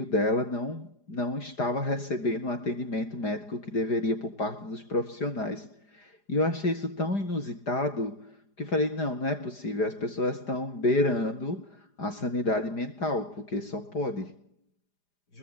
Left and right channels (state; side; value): late; right; 4.9 ms